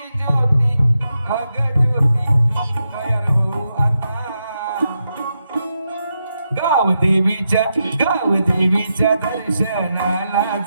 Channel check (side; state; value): both; inverted; correlation -0.85